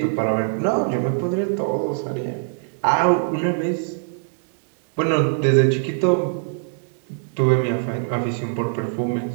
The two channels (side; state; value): left; silent; digital silence